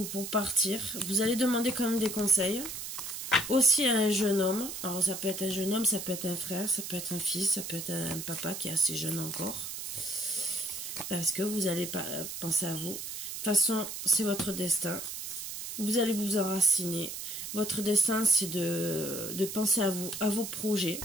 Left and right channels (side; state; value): right; noise; hiss, 7 dB below the sound